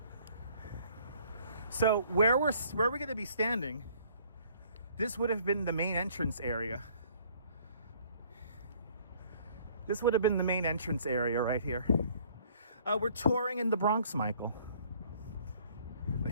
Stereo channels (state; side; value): inverted; both; correlation -0.58